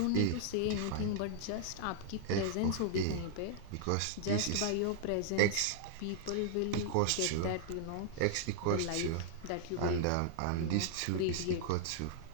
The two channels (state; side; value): different; both; correlation -0.01